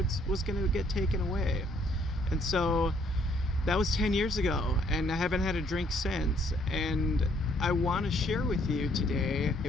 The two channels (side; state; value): both; normal; correlation 0.66